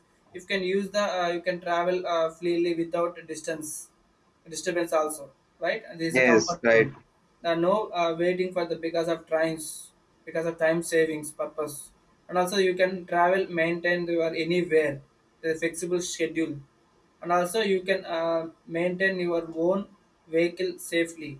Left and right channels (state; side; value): identical; both; correlation 1.00